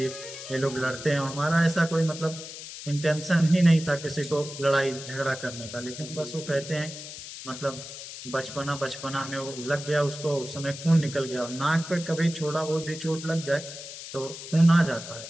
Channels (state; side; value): noise; left; hiss, 11 dB below the sound